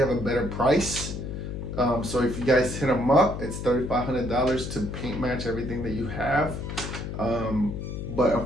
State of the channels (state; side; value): noise; left; hum, 6 dB below the sound